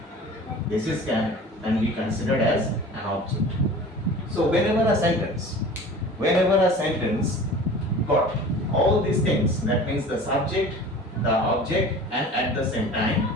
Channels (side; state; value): both; normal; correlation 0.41